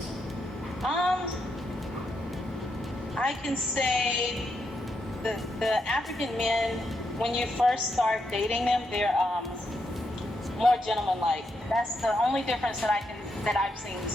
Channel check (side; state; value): both; normal; correlation 0.81